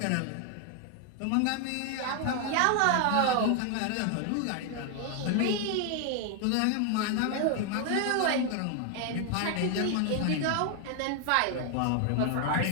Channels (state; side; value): different; both; correlation 0.01